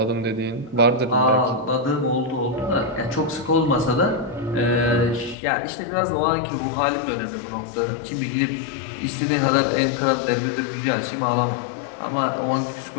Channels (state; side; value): drops out; right; at 5.4 s